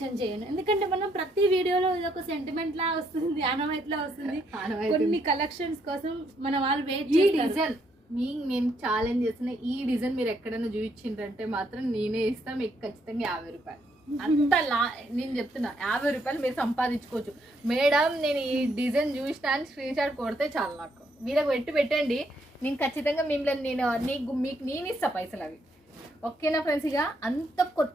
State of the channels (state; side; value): normal; both; correlation 0.73